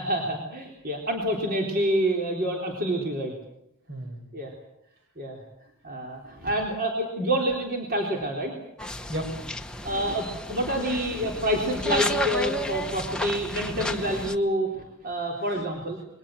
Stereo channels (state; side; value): normal; both; correlation 0.19